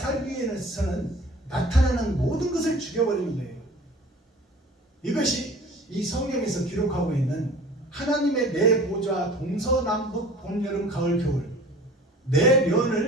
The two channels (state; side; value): normal; both; correlation 0.44